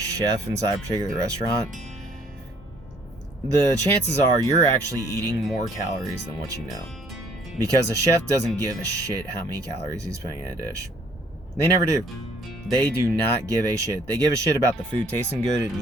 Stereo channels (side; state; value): both; normal; correlation 0.61